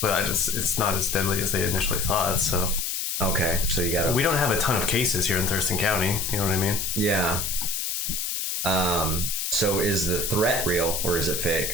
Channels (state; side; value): noise; left; hiss, 2 dB below the sound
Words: not as deadly as they initially thought. So okay, so we don't have a ton of cases here in Thurston County. You know what I mean? Yeah. So is the threat real or is it